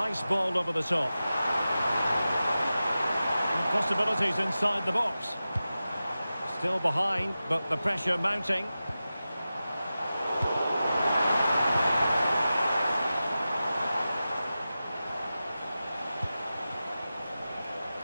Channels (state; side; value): inverted; both; correlation -0.94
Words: ball over the top. And possibilities inside the box. Still behind, but the pressure mounting.